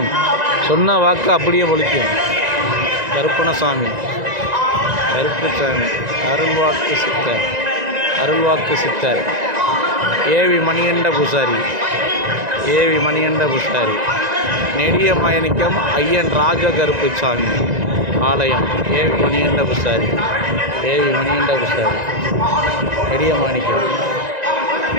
சொன்ன வாக்கு அப்படியே பலிக்கும். கருப்பணசாமி, கருப்புசாமி, அருள்வாக்கு சித்தர், அருள்வாக்கு சித்தர் ஏவி மணிகண்ட பூசாரி, ஏவி மணிகண்ட பூசாரி, நெடிய மயனிக்கம் ஐயன் ராஜ கருப்புசாமி ஆலயம், ஏவி மணிகண்ட பூசாரி, ஏவி மணிகண்ட பூசாரி, நெடிய மாணிக்கம்,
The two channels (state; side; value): late; left; 1.9 ms